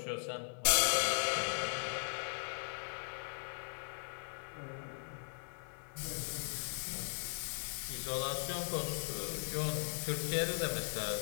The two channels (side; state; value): right; silent; digital silence